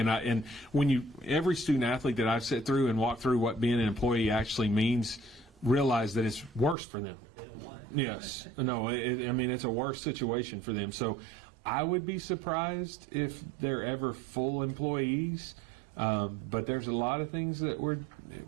when every student athlete that I've sat through and walked through what being an employee actually means, realize that it's worse for them. Yes. No, it's a worse situation for them. So I would be surprised if they're ever full employees. But there's a lot of things that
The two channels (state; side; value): drops out; left; at 6.8 s